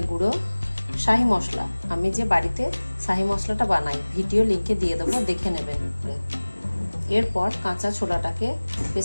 গুঁড়ো, শাহি মশলা। আমি যে বাড়িতে শাহি মশলাটা বানাই ভিডিও লিঙ্কে দিয়ে দেবো, দেখে নেবেন। এরপর কাঁচা ছোলাটাকে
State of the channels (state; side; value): inverted; both; correlation -1.00